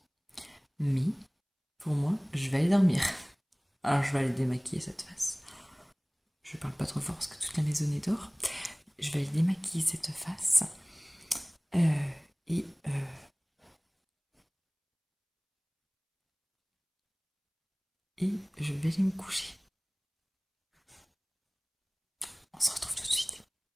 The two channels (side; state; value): both; identical; correlation 1.00